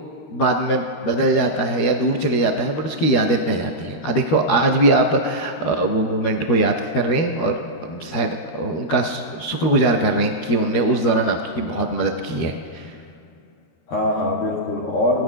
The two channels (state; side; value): late; right; 13 ms